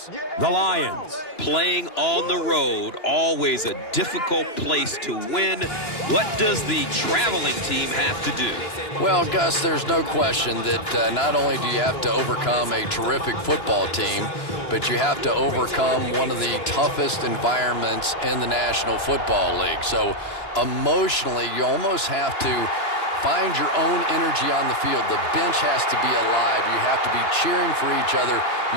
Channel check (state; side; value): late; right; 2.9 ms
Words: The Lions. Playing on the road, always a difficult place to win. What does the traveling team have to do? Well, Gus, there's no question that not only do you have to overcome a terrific football team, but you have to overcome one of the toughest environments in the National Football League. So emotionally, you almost have to find your own energy on the field. The bench has to be alive. You have to be cheering for each other.